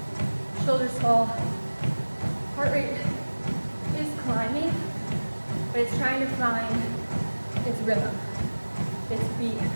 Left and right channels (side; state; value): both; inverted; correlation -1.00